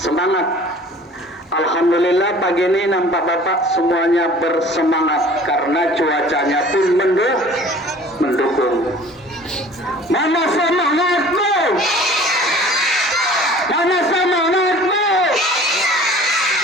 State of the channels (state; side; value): normal; both; correlation 0.48